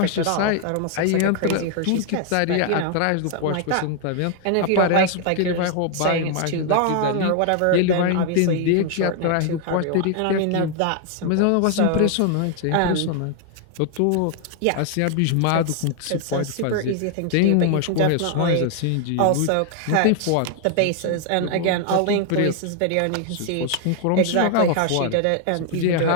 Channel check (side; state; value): both; different; correlation 0.00